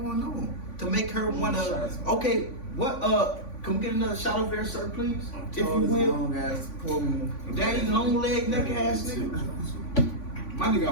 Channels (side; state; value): right; late; 3.5 ms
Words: on to make her wanna? Okay, what? Can we get another shot over there, sir, please? If you will. Long ass, daddy, long leg, neck ass nigga. My nigga